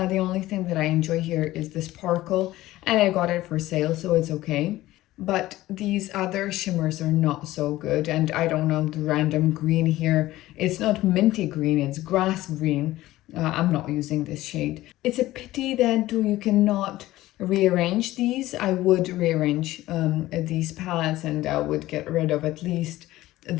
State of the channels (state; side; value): quieter; right; 16.4 dB